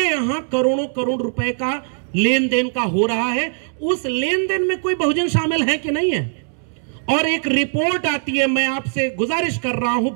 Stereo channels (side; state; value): left; silent; digital silence